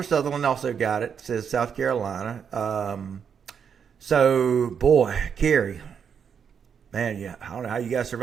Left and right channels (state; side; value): quieter; left; 7.2 dB